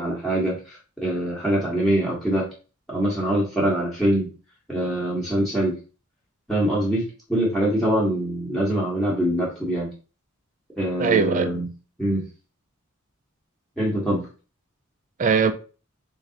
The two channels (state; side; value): normal; both; correlation 0.60